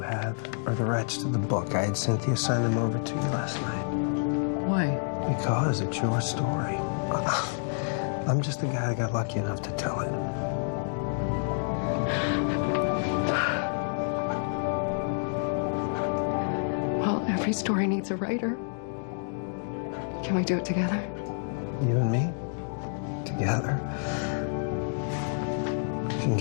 are the rights to the book. I had Cynthia sign them over to you last night. Why? Because it's your story. I'm just the guy that got lucky enough to tell it. Well, every story needs a writer. Can we do it together? You and me? Together? We can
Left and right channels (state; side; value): silent; right; digital silence